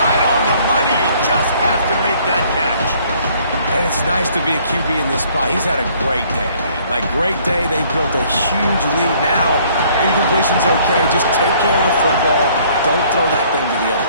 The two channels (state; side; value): inverted; both; correlation -0.60